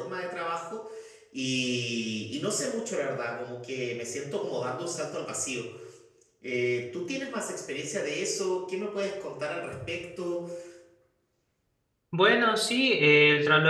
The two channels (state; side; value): identical; both; correlation 1.00